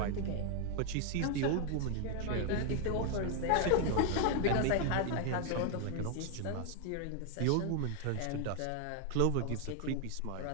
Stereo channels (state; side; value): different; both; correlation 0.00